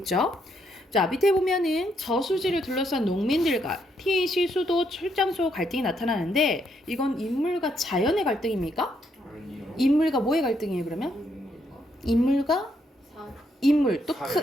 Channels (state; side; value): normal; both; correlation 0.75